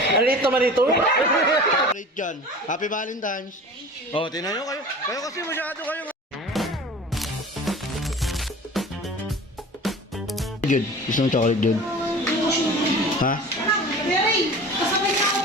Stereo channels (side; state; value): both; normal; correlation 0.39